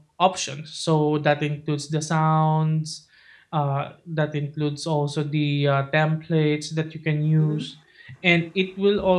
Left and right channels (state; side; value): identical; both; correlation 1.00